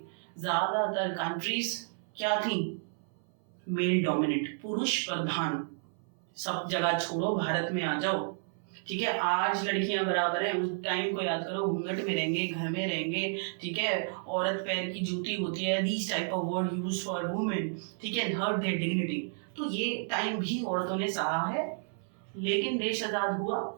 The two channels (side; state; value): left; silent; 57 dB below the other